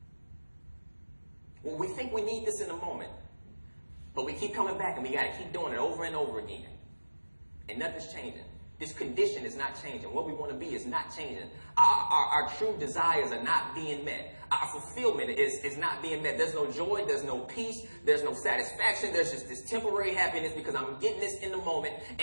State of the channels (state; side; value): inverted; both; correlation -1.00